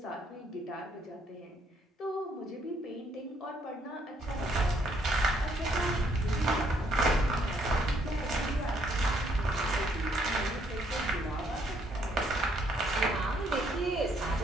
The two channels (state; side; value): normal; both; correlation 0.69